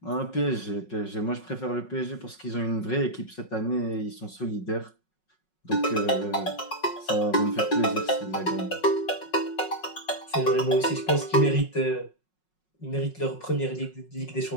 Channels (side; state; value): right; late; 5.5 ms